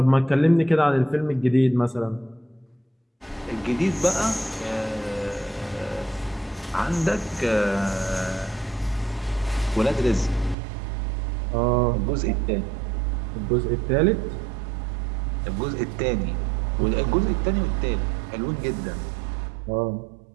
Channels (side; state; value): left; drops out; at 10.6 s